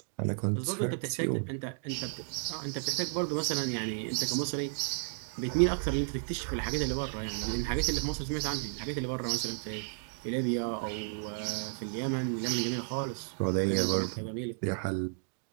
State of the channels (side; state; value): left; silent; digital silence